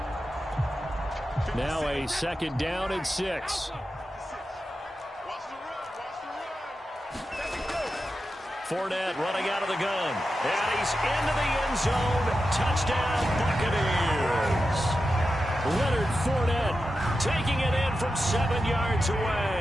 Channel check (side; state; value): both; normal; correlation 0.90